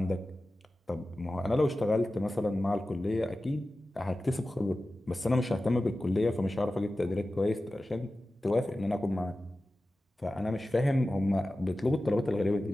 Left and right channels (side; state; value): both; normal; correlation 0.95